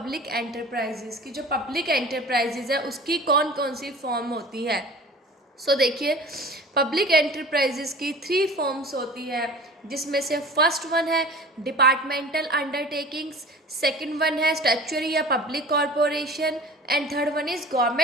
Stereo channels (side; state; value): both; normal; correlation 0.41